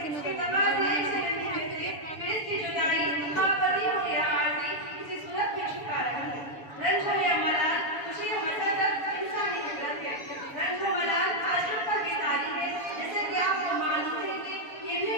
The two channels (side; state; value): right; late; 7.0 ms